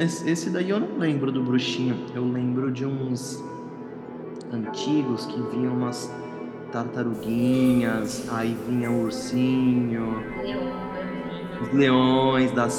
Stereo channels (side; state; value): both; identical; correlation 1.00